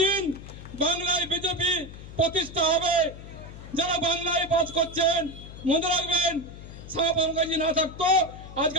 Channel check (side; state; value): left; noise; hum, 14 dB below the sound